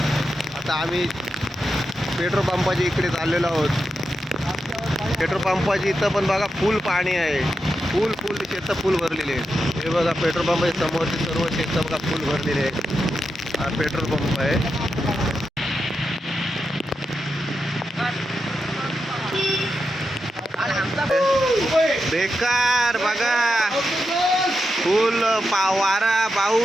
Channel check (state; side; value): normal; both; correlation 0.87